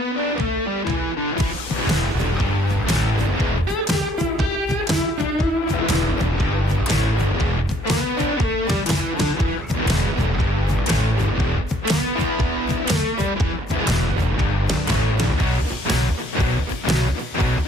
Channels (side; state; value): both; normal; correlation 0.66